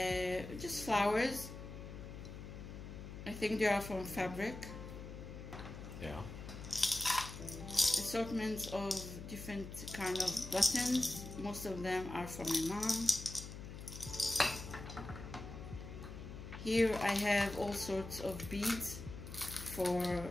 just flowers. I think they are from fabric. Yeah. Assortments of different kind of buttons. Most of them are from my mom. Here I have all sorts of beads for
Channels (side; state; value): left; noise; hum, 10 dB below the sound